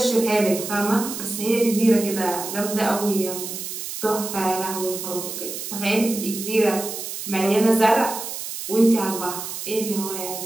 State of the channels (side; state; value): right; noise; hiss, 7 dB below the sound